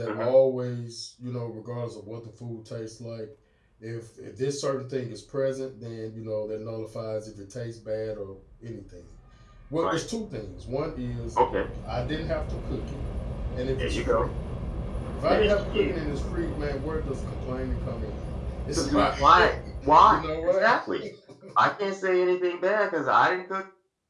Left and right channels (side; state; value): both; identical; correlation 1.00